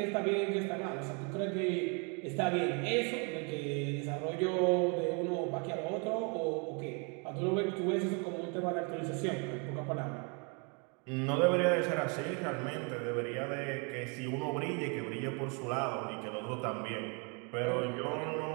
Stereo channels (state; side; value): quieter; left; 35.1 dB